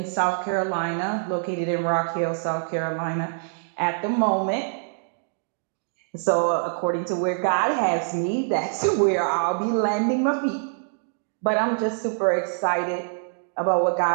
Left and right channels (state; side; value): silent; left; digital silence